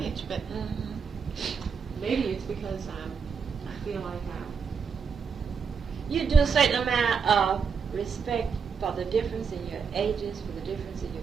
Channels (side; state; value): left; quieter; 6.1 dB